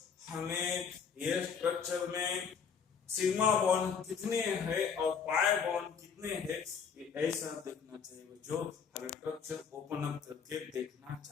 हमें ये स्ट्रक्चर में सिग्मा बॉन्ड कितने हैं और पाई बॉन्ड कितने हैं, ये ऐसा देखना चाहिए बच्चों, हमें स्ट्रक्चर ओपन अप करके देखना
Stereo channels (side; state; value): right; quieter; 6.6 dB